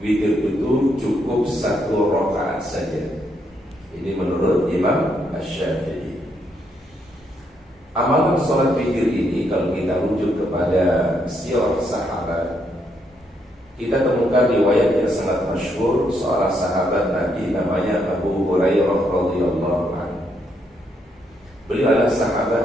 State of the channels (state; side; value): normal; both; correlation 0.76